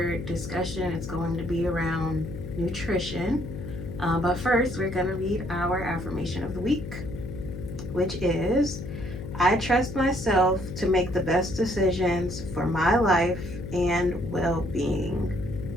discussion is going to be around nutrition. But first we're going to read our affirmation of the week, which is, I trust myself to make the best decisions for my life and well-being.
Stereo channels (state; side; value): noise; left; hum, 9 dB below the sound